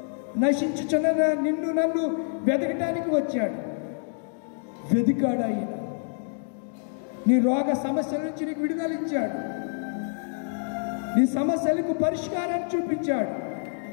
నశించుచున్న నిన్ను నన్ను వెతకటానికి వచ్చాడు. వెతికాడు ఆయన. నీ రోగ సమస్యల నుంచి నీకు విడుదల ఇచ్చాడు. నీ సమస్యలకు పరిష్కారాన్ని చూపించాడు.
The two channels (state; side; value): silent; right; digital silence